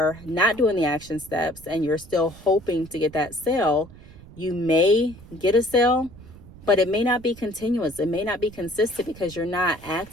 not doing the action steps and you're still hoping to get that sale, you may get a sale, but it may not be continuous. It may not be consistent because you're not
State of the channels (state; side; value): noise; right; rumble, 19 dB below the sound